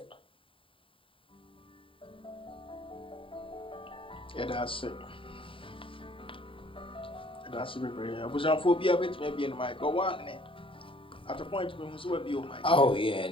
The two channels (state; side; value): late; right; 0.25 ms